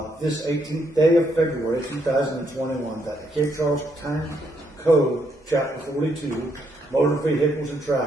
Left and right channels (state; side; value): normal; both; correlation 0.75